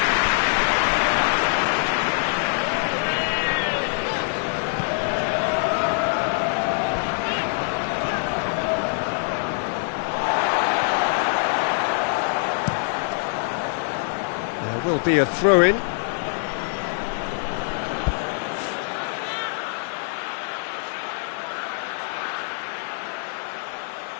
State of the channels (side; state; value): right; silent; 61 dB below the other